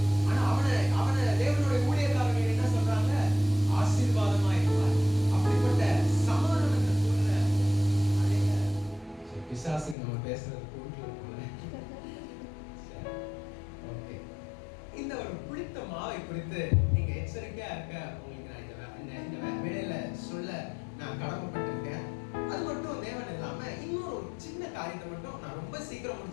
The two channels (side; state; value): right; drops out; at 10.0 s